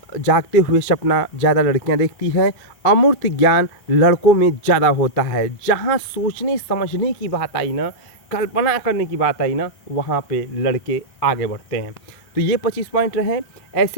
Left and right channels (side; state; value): right; late; 2.4 ms